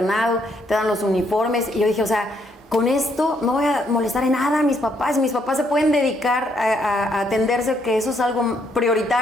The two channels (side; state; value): both; normal; correlation 0.72